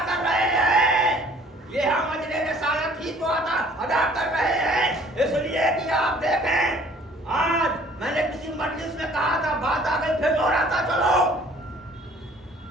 کر رہے ہیں, یہ ہم اجر رسالت ہی تو ادا کر رہے ہیں. اس لیے کہ آپ دیکھیں, آج میں نے کسی مجلس میں کہا تھا, بات آ گئی پھر دوہراتا چلو.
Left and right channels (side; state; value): both; normal; correlation 0.55